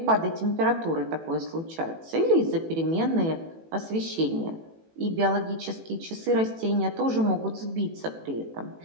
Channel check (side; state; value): left; late; 18 ms